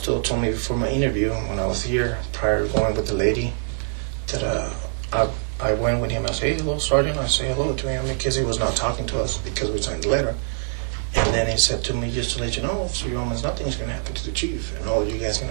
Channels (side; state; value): left; silent; digital silence